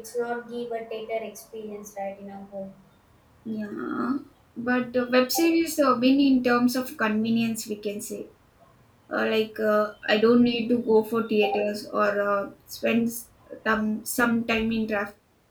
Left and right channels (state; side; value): identical; both; correlation 1.00